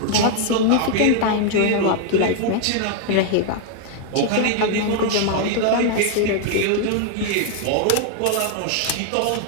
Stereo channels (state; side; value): different; both; correlation 0.00